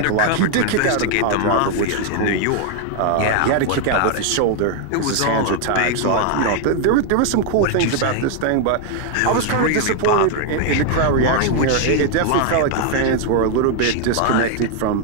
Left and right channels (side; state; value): both; different; correlation 0.00